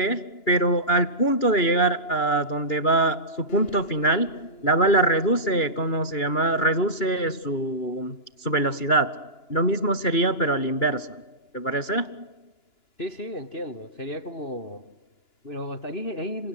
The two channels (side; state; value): right; late; 2.9 ms